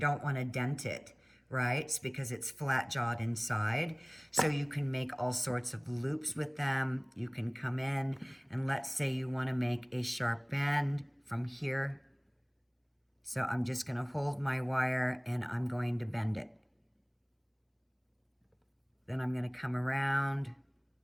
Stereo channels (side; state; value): both; identical; correlation 1.00